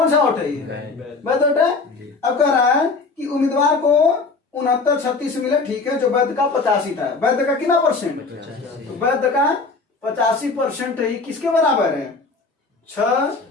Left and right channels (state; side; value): quieter; right; 4.0 dB